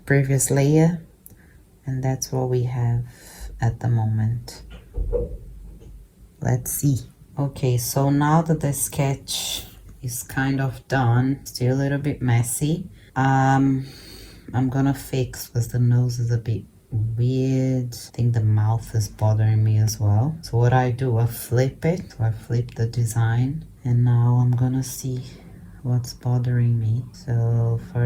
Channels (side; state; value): both; identical; correlation 1.00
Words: previous layer, and that's what we have at the moment. Let's see. Okay, so now that the sketch is kind of done, still a little bit messy, I'm gonna fix because the nose is a bit weird. I think the mouth is bothering me as well. So what I do, I flip it. So I flip the design, and now I'm gonna see what's bothering me. So